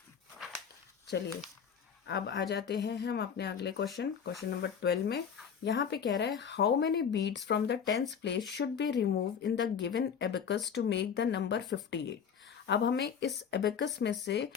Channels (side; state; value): right; quieter; 7.3 dB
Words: चलिए अब आ जाते हैं हम अपने अगले क्वेश्चन नंबर 12 में। यहाँ पे कह रहा है how many beads from the 10th place should be remove in the given abacus to make the number 58। अब हमें इस एबेकस में से